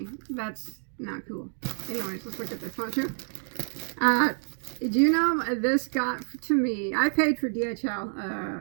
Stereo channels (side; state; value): left; silent; 56 dB below the other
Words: That's not cool. Anyways, let's look at this one too. Do you know this got to me? I paid for